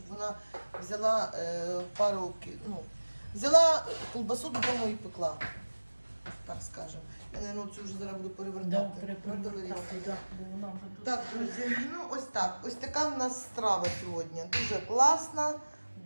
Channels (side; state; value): both; inverted; correlation -1.00